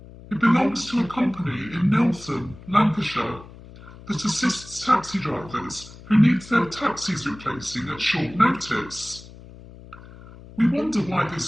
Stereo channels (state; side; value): noise; left; hum, 18 dB below the sound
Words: It belongs to a company in Neltham, Lancashire, that assists taxi drivers who need their taxis replacing at short notice. We wonder why